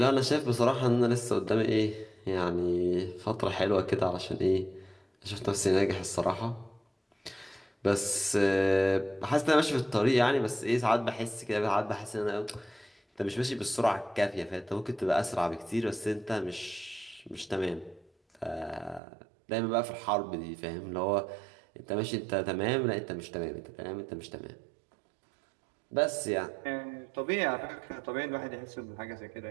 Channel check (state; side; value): drops out; left; at 19.0 s